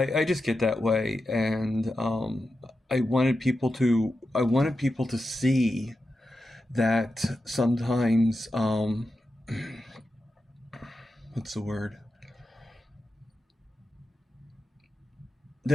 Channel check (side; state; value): both; normal; correlation 0.90